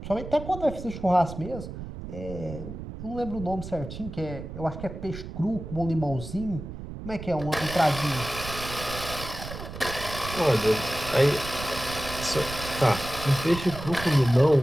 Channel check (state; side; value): noise; right; rumble, 10 dB below the sound